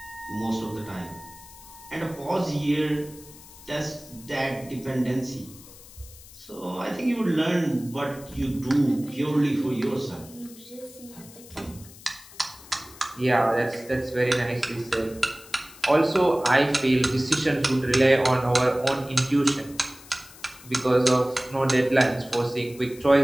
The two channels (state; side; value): noise; left; hiss, 20 dB below the sound